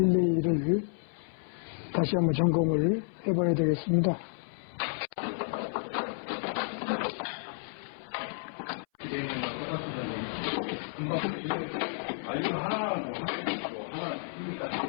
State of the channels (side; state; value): right; silent; 57 dB below the other